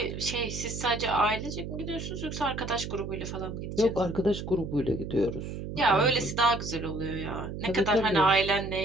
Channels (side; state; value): right; noise; hum, 7 dB below the sound